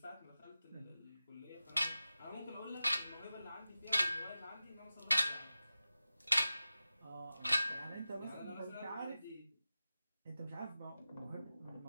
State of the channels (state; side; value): inverted; both; correlation -0.94